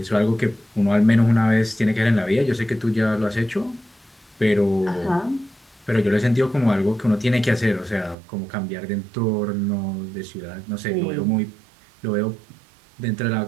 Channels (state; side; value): drops out; left; at 8.2 s